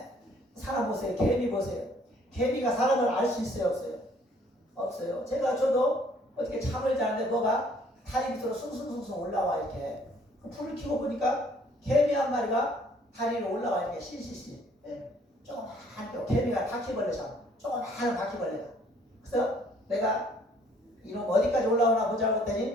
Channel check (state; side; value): normal; both; correlation 0.61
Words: 사람 보세요. 개미 보세요. 개미가 사람을 알 수 있어요? 없어요? 없어요. 저도 어떻게 잠을 자는데 뭐가 다리 밑으로 숭숭숭숭 올라와 이렇게 불을 켜고 보니까 개미 한 마리가 다리 위로 올라와 이렇게 실실실. 조그만 개미가 바퀴벌레잖아. 조그만 바퀴벌레가. 그래서 내가 이놈 어디까지 올라오나 보자고